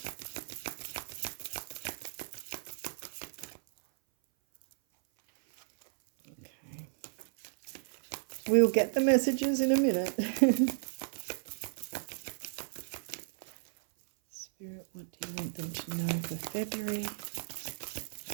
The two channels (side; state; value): left; silent; 55 dB below the other